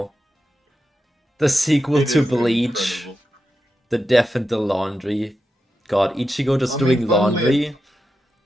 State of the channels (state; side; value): normal; both; correlation 0.89